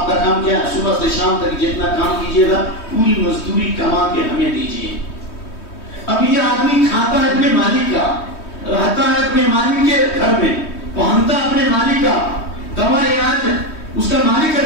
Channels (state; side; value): late; right; 3.2 ms